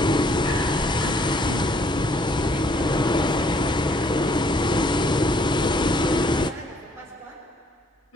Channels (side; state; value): both; normal; correlation 0.64